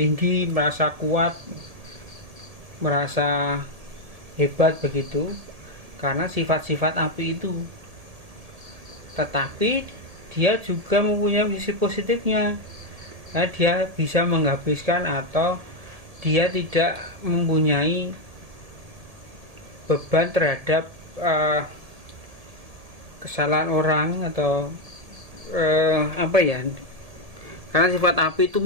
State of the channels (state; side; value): late; left; 1.8 ms